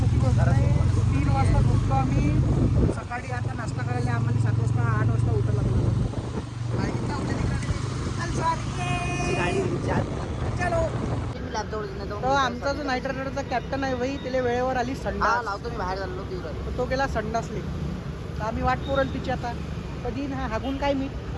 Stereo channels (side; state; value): both; identical; correlation 1.00